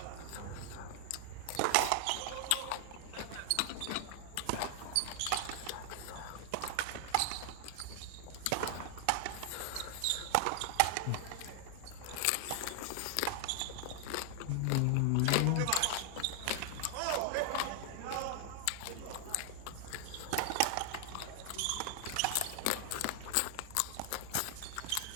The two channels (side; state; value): both; different; correlation 0.00